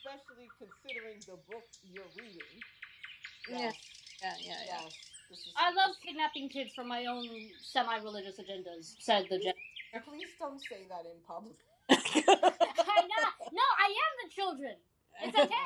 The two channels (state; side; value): identical; both; correlation 1.00